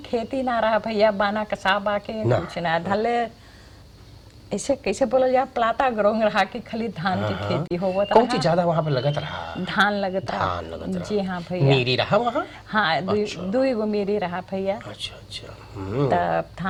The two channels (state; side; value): identical; both; correlation 1.00